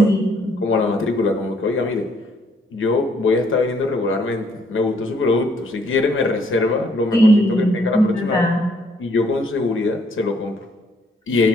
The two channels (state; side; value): normal; both; correlation 0.67